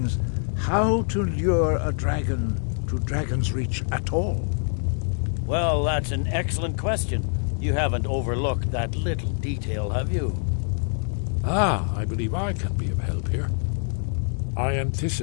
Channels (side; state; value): right; silent; 62 dB below the other